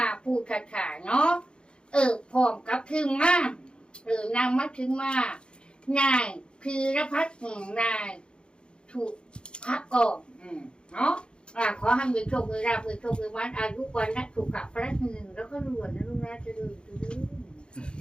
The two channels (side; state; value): right; late; 0.053 ms